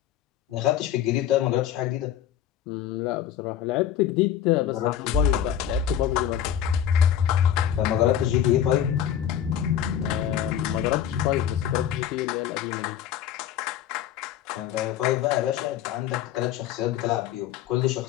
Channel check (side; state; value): right; quieter; 10.0 dB